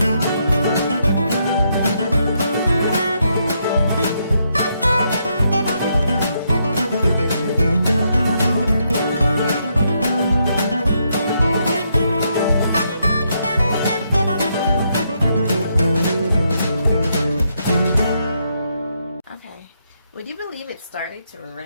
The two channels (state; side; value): inverted; both; correlation -0.77